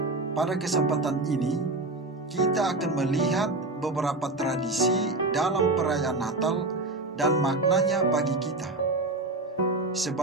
Pada kesempatan ini, kita akan melihat beberapa tradisi dalam perayaan Natal dan maknanya bagi kita.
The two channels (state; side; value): quieter; left; 3.1 dB